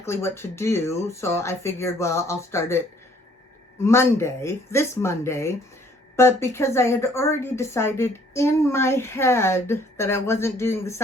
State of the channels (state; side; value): normal; both; correlation 0.60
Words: what to do. So I figured, well, I'll start it this Monday. But because I had already decided in my head that I wasn't doing the